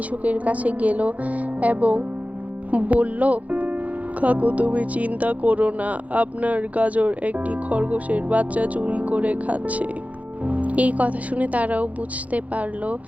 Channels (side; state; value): left; late; 0.070 ms